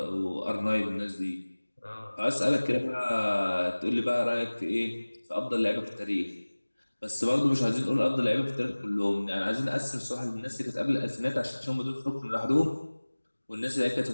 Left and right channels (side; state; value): both; inverted; correlation -1.00